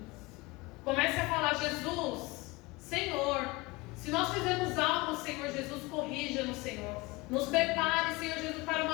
Comece a falar: Jesus, Senhor, se nós fizermos algo, Senhor Jesus, corrija-nos, Senhor. Nos prepare, Senhor Jesus, para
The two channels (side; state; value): right; quieter; 23.2 dB